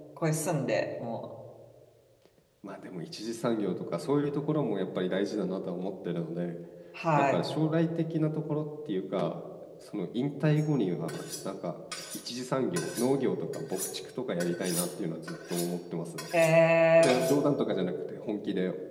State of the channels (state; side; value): identical; both; correlation 1.00